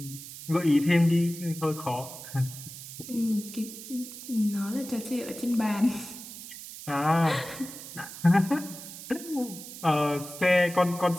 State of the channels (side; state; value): right; noise; hiss, 12 dB below the sound